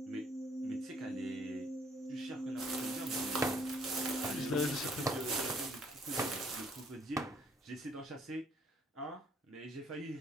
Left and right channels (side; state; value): both; normal; correlation 0.64